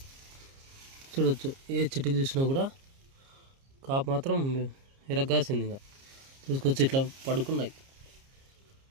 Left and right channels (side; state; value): left; late; 30 ms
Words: చూడవచ్చు. ఏ చెట్టుకి చూసినా కూడా కాపు మాత్రం ఎరగాసింది. ఇంకా చూసుకొచ్చి ఇట్లా పడుకున్నాయి.